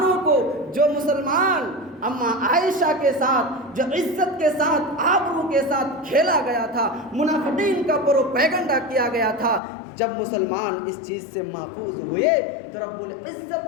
کو، جو مسلمان اماں عائشہ کے ساتھ، جو عزت کے ساتھ، آبرو کے ساتھ کھیلا گیا تھا، منافقین کا پروپیگنڈا کیا گیا تھا، جب مسلمان اس چیز سے محفوظ ہوئے تو رب العزت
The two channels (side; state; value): right; drops out; at 9.6 s